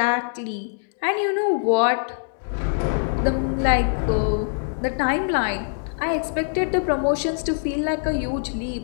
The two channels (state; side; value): silent; right; digital silence